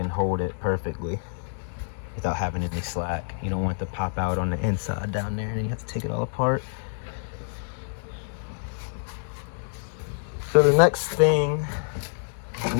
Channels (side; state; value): right; silent; 60 dB below the other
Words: hold it perfectly without having any slack. You don't want it to pop out on the inside down there and you have to take it all apart. So the next